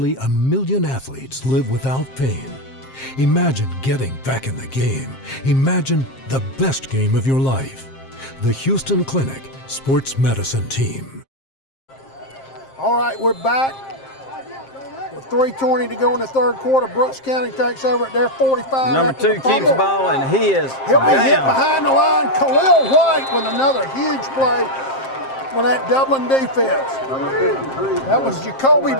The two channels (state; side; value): late; right; 7.5 ms